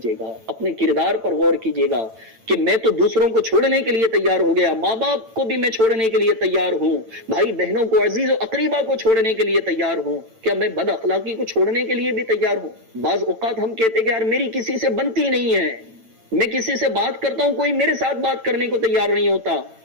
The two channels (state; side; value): late; left; 8.9 ms